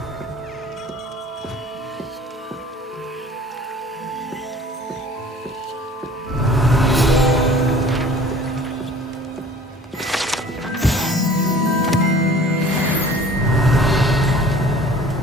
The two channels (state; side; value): normal; both; correlation 0.47